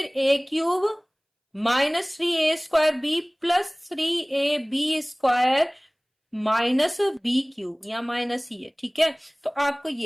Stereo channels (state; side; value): identical; both; correlation 1.00